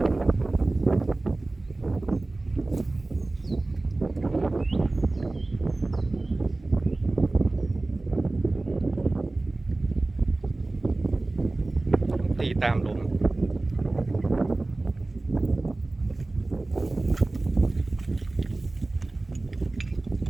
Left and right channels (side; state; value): left; quieter; 3.0 dB